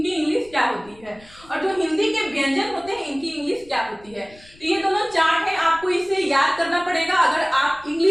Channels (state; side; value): noise; left; rumble, 25 dB below the sound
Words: इंग्लिश क्या होती है, और जो हिंदी के व्यंजन होते हैं इनकी इंग्लिश क्या होती है। तो ये दोनों चार्ट है, आपको इसे याद करना पड़ेगा अगर आप